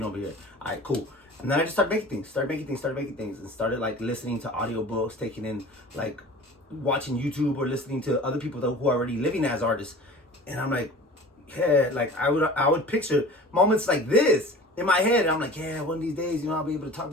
over here. All right, cool. And then I just started making things, and started like listening to audiobooks, taking in like watching YouTube or listening to other people who are already living as artists. And I'm like, yeah, like I would picture moments like this in my head, I'm like, yeah, one of these days, you know, I'll be able to talk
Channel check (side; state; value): both; normal; correlation 0.40